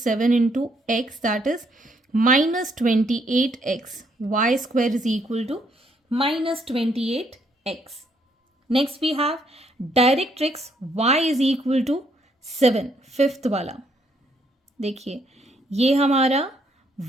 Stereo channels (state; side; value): normal; both; correlation 0.71